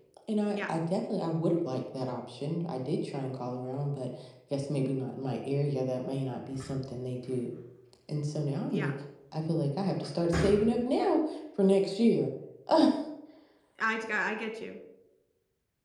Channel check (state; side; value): identical; both; correlation 1.00